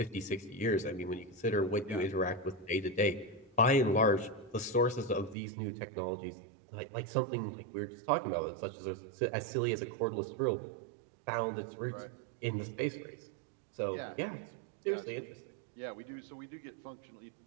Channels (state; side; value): drops out; left; at 5.4 s